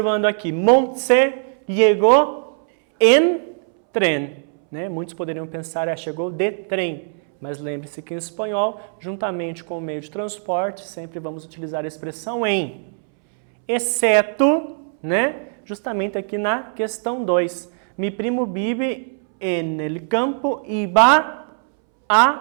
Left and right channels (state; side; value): silent; left; 65 dB below the other